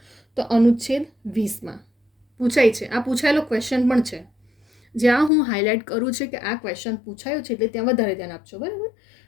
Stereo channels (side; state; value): right; drops out; at 5.3 s